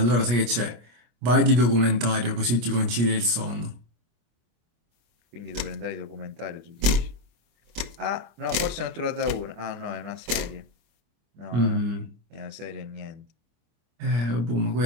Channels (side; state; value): left; late; 25 ms